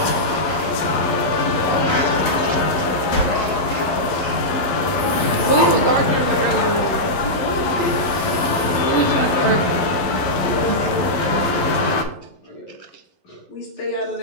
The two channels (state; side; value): late; right; 11 ms